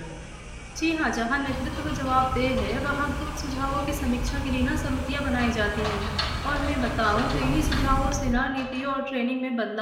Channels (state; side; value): identical; both; correlation 1.00